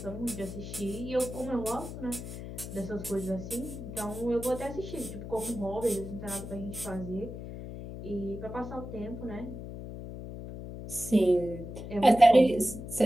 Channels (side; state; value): left; noise; hum, 9 dB below the sound